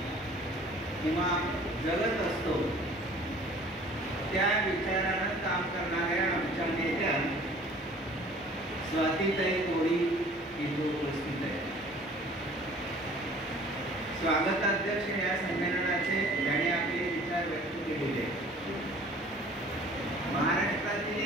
किंवा जगत असतो त्या विचारानं काम करणाऱ्या आमच्या नेत्या स्वातीताई कोळी इथे उपस्थित आहे. स्वागताध्यक्ष या संमेलनाचे ज्याने आपले विचार व्यक्त केलेले. महाराष्ट्रातील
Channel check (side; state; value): both; normal; correlation 0.50